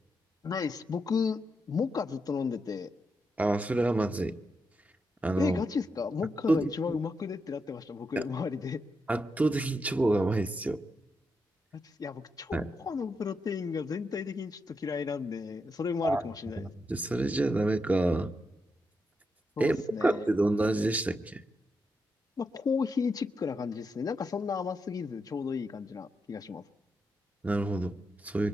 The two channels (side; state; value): both; normal; correlation 0.84